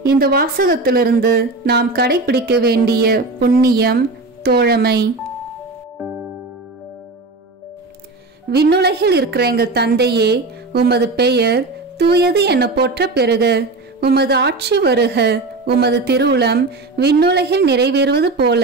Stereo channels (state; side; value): quieter; left; 3.3 dB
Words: இந்த வாசகத்திலிருந்து நாம் கடைபிடிக்க வேண்டிய புண்ணியம் தோழமை. விண்ணுலகில் இருக்கிற எங்கள் தந்தையே, உமது பெயர் தூயது என போற்ற பெறுக. உமது ஆட்சி வருக. உமது திருவுளம் விண்ணுலகில் நிறைவேறுவது போல